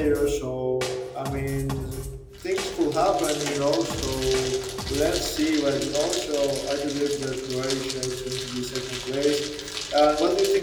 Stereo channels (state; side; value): identical; both; correlation 1.00